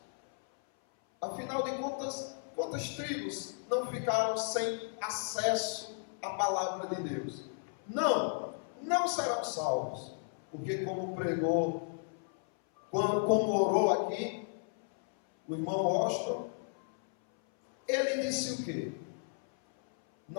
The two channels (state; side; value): silent; right; 55 dB below the other